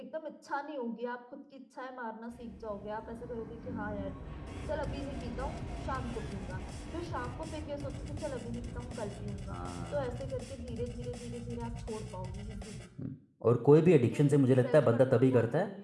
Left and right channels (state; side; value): identical; both; correlation 1.00